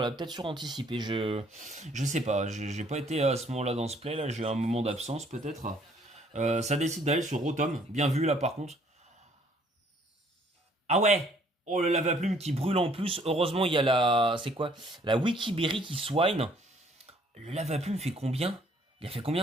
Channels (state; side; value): normal; both; correlation 0.62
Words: Elle a peut-être suranticipé. Je sais pas. J'ai pas été à ce moment-là dans ce play. Là, j'ai eu un moment d'absence, peut-être. Ça décide d'aller sur Rotom. Bien vu, là, par contre. Ah ouais! Oh, le lava-plume qui brûle en plus. Heureusement, il y a la... C'est quoi? La Wikiberry qui swine. Le lava-plume fait combien? Il a fait